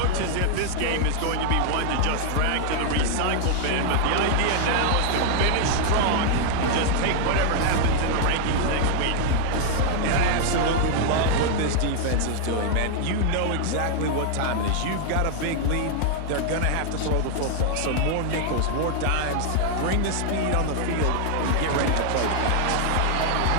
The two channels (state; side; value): different; both; correlation 0.00